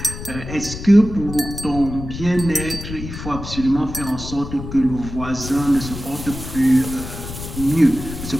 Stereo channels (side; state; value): left; noise; rumble, 9 dB below the sound